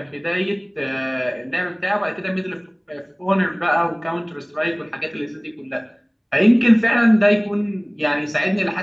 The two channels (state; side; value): identical; both; correlation 1.00